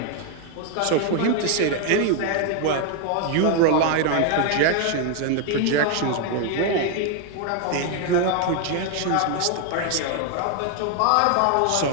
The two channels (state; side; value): different; both; correlation 0.01